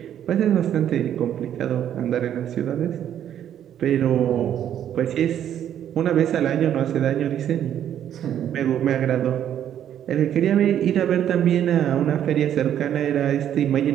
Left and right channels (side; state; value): left; quieter; 10.3 dB